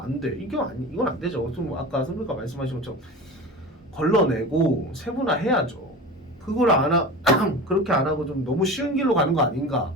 돼. 이건 안 되죠. 좀 아까 선배가 말씀하신 것처럼 걸러내고 세분화해야죠. 그걸 그렇게 안 하고 좀 너무 쉬운 길로 가는 거 아닌가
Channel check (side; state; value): both; normal; correlation 0.32